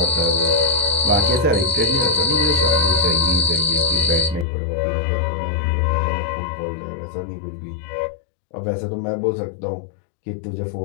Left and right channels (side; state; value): right; drops out; at 4.5 s